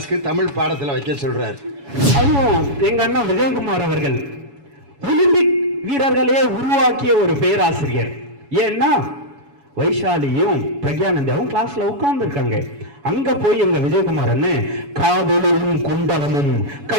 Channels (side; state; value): left; late; 7.1 ms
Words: தமிழ் பாடத்தில் வைக்க சொல்றாரு. அதுவும் எங்க அண்ணன் விஜயகுமார் அவர்கள் ஒலிம்பிக் வீரர்களே உருவாக்கிய ஒரு பேராசிரியர். ஏன்னா வைஷாலியும் பிரக்யானந்தாவும் கிளாஸ்ல உட்கார்ந்துருக்காங்க. அங்க போய் எங்க விஜயகுமார் அண்ணன் காதலும் குண்டலமும்